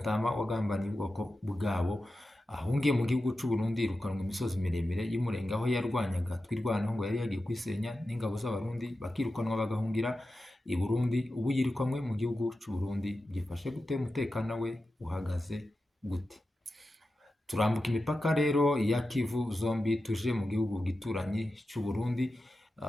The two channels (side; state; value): both; normal; correlation 0.92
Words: wagambaniye ubwoko bwabo ahungiye mu gihugu cy'u Burundi, irukanwa imisozi miremire y'umurenge aho yarwanyaga twirwanaho ngo yari yagiye kwisenya n'ingabo z'abarundi, bakirukanwa bagahungira i Burundi. Ubu yirikanwe mu gihugu cy'u Burundi. Byifashe gute? Umutekano we uhagaze gute? Turambuka imipaka rero ya Kivu zombi tuje mu gihugu gituranye cy'u Burundi.